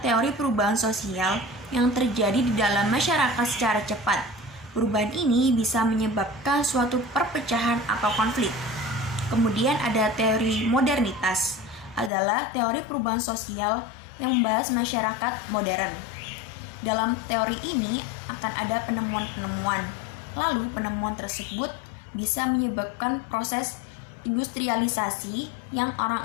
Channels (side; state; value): right; drops out; at 12.1 s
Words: teori perubahan sosial yang terjadi di dalam masyarakat secara cepat. Perubahan ini bisa menyebabkan suatu perpecahan atau konflik. Kemudian ada teori modernitas, adalah teori perubahan sosial yang membahas masyarakat modern. Dalam teori ini akan ada penemuan-penemuan. Lalu penemuan tersebut bisa menyebabkan proses industrialisasi yang